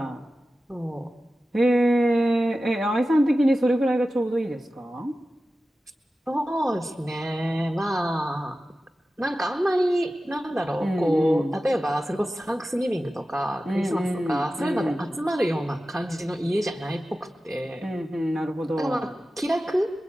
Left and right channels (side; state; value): both; normal; correlation 0.94